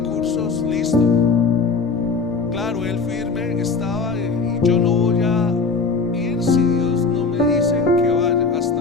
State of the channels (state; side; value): quieter; right; 4.5 dB